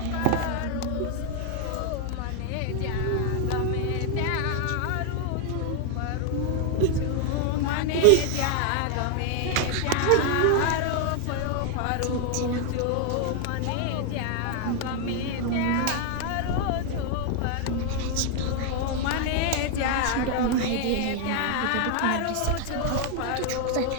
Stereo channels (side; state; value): both; different; correlation 0.00